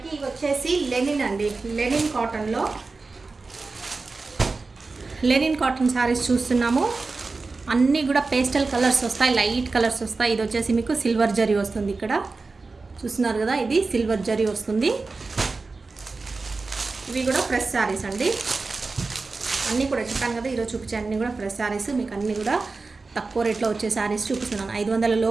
ఇవి వచ్చేసి లెనిన్ అండి, లెనిన్ కాటన్లో లెనిన్ కాటన్ శారీస్ చూస్తున్నాము. అన్నీ కూడా పేస్టల్ కలర్స్ వస్తాయి, లైట్ కలర్స్ వస్తాయి. ఇది వచ్చేసి మీకు సిల్వర్ జరీ వస్తుంది, ఇక్కడ చూస్తున్నారు కదా. ఇది సిల్వర్ జరీ వస్తుంది. ఇవి కూడా ఫ్రెష్ శారీస్ అండి. అన్నీ కూడా చెప్పాను కదా, ఈరోజు చూపించే అన్నీ కూడా ఫ్రెష్ శారీస్. మీకు అన్నీ కూడా తక్కువ రేట్లో వచ్చే శారీస్ చూపిస్తున్నాను. 500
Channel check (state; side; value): quieter; left; 3.9 dB